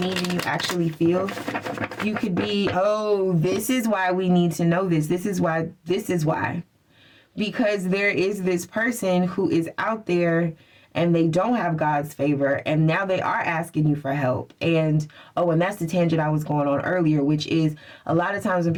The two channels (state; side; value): identical; both; correlation 1.00